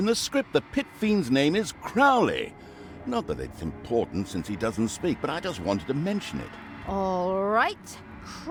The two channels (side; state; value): both; identical; correlation 1.00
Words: the script the Pit Fiend's name is Crowley. Not that it's important since he doesn't speak, but I just wanted to mention it. All right,